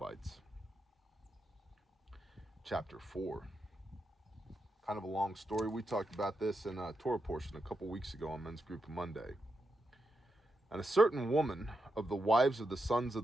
Chapter 4. Kind of a long story. We talked about this in a Torah portion a couple weeks ago on Men's Group Monday. And a certain woman of the wives of the sons of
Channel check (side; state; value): both; normal; correlation 0.85